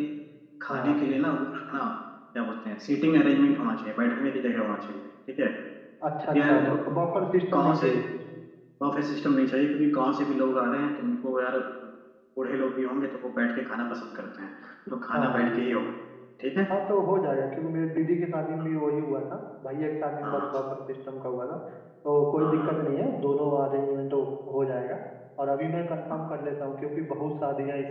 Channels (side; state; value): both; identical; correlation 1.00